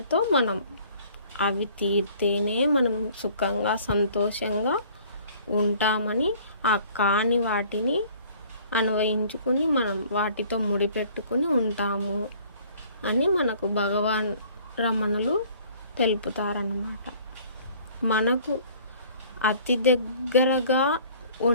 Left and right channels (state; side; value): inverted; both; correlation -0.54